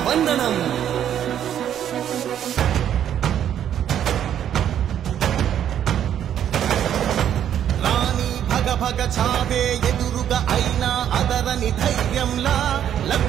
వందనం. భగ చావే ఎదురుగా అయినా అదరని ధైర్యంలా,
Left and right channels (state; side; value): quieter; left; 10.1 dB